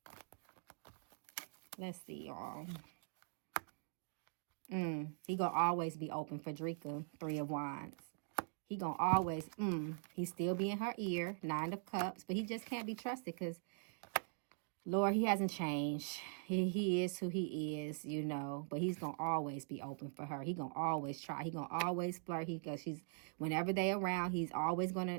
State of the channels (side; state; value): left; silent; digital silence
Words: Let's see, y'all. He gonna always be open for Dreka. 3 of Wands. He gonna always, he still be in her ear. 9 of Cups, but he just can't be trusted because, Lord, he hasn't changed. He is who he is, you know, but he's gonna always be open for her. He gonna always try. He gonna always flirt. Because whenever they around, he's always